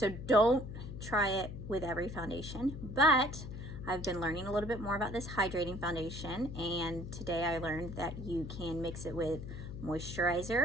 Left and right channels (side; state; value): left; noise; hum, 9 dB below the sound